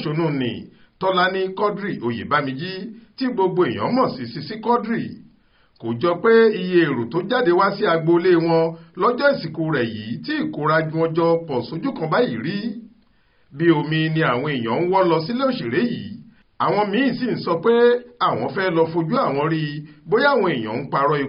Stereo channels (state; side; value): identical; both; correlation 1.00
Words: ni Tọ́lání Quadri Oyèbámijí tí gbogbo èèyàn mọ̀ sí Sisi Quadri. Kò jọ pé iye èrò tó jáde wá sí agboolé wọn lọ́jọ́ ìsìnkú rẹ̀ yìí tí ìkórajù wọn jọ pọ̀ sójú kan báyìí rí. Bí omi ni àwọn èèyàn ń wọ́ lọ sílé òṣèré yìí. Àwọn míín sì ń sọ pé àwọn fẹ́ lọ fojú àwọn rí bóyá àwọn èèyàn ń parọ́